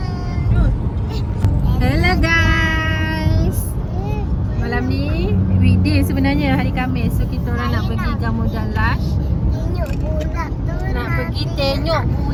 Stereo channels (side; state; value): both; identical; correlation 1.00